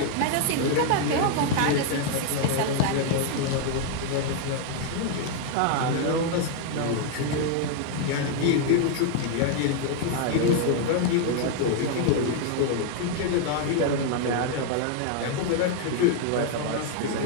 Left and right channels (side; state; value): both; different; correlation 0.00